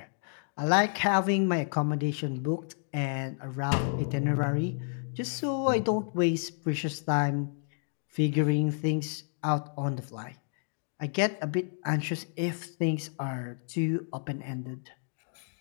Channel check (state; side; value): silent; right; digital silence